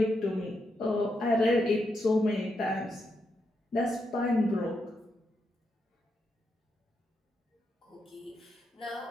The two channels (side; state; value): both; normal; correlation 0.83